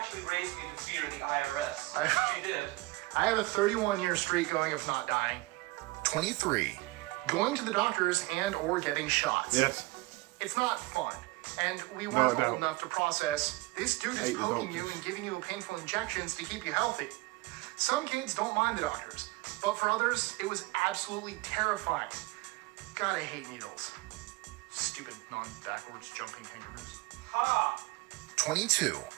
raised me to fear the IRS. She did. I have a 31-year streak going of not dying. 23. Going to the doctors and or getting shots. Yes. It's not fun. And we weren't old enough to process, this dude is poking you and giving you painful injections to keep you healthy. Some kids don't mind the doctors, but for others, it was absolutely terrifying. God, I hate needles. Stupid non-backwards jumping kangaroos. Ha! 22.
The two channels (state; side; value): quieter; left; 22.5 dB